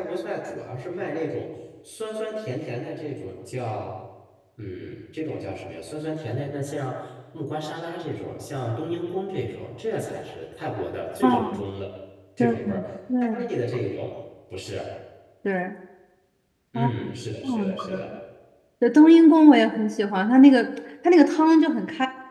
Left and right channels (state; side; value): identical; both; correlation 1.00